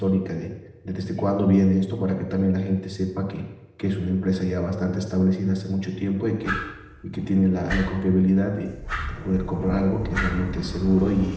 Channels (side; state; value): both; identical; correlation 1.00